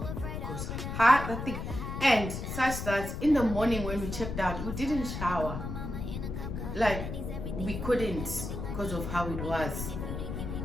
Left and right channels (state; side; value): noise; left; rumble, 5 dB below the sound